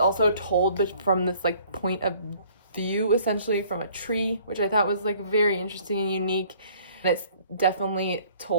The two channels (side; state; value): both; inverted; correlation -0.57